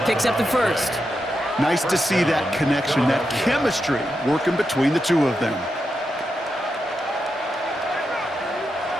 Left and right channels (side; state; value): both; normal; correlation 0.86